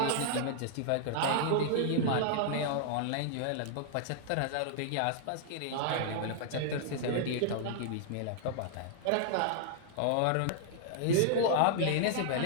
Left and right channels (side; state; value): both; different; correlation -0.01